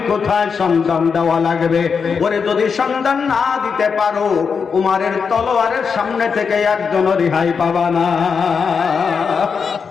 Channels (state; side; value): quieter; right; 5.9 dB